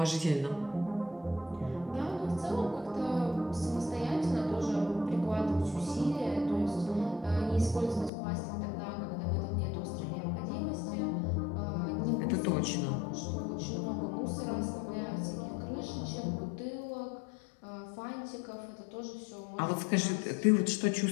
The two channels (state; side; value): drops out; right; at 8.1 s